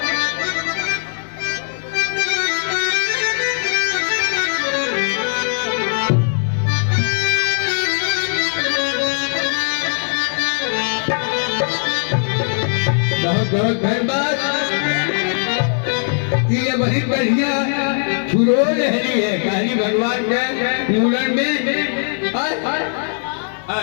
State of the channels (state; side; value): silent; right; 60 dB below the other